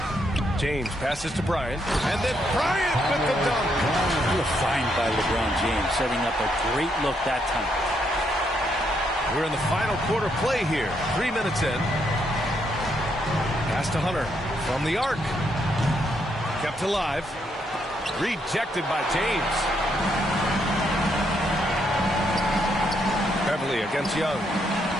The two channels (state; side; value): normal; both; correlation 0.76